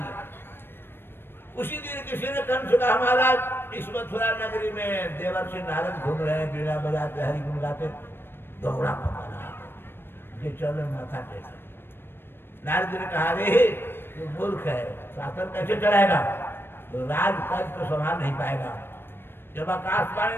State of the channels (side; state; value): right; late; 0.10 ms